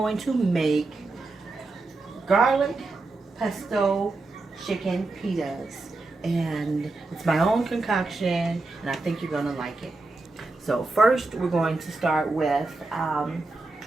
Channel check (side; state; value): left; quieter; 3.3 dB